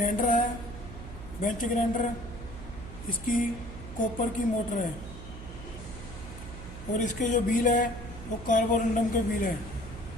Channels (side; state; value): right; noise; hum, 12 dB below the sound